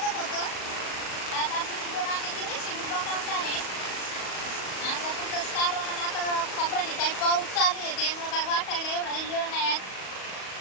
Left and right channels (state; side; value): late; right; 37 ms